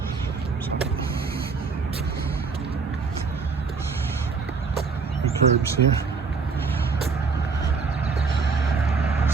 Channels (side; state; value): left; quieter; 5.0 dB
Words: The curbs here.